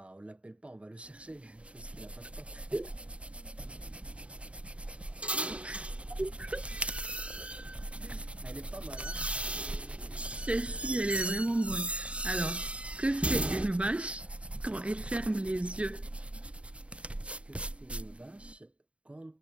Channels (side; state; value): left; late; 0.061 ms